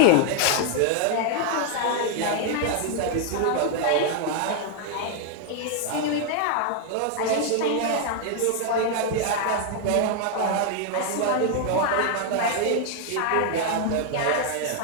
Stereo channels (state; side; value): different; both; correlation 0.00